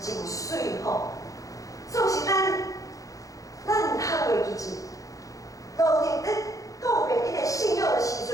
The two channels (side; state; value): right; late; 0.16 ms